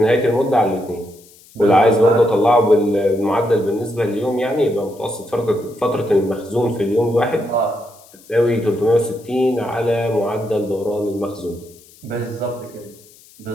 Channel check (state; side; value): noise; left; hiss, 25 dB below the sound